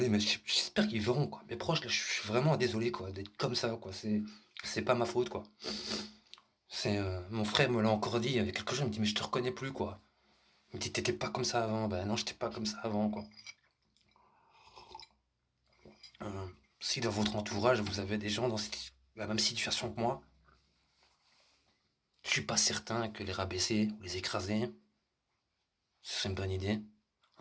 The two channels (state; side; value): identical; both; correlation 1.00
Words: mais j'espère qu'ils verront, quoi. Mes proches, là, je suis vraiment désolé, quoi, d'être comme ça, quoi. C'est pas ma faute, quoi. Mon frère me l'a encore dit, il y avait quelques jours, il me dit, mais je te reconnais plus, quoi. Il me dit, t'étais pas comme ça avant. Ben non, j'étais pas comme ça avant, quoi. Si dans votre entourage, vous avez des gens dans la même situation que moi, je suis pas certain que les rabaisser ou les écraser, ce serait une bonne idée.